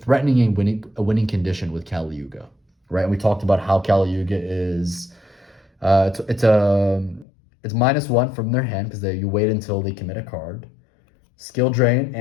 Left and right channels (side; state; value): right; drops out; at 7.2 s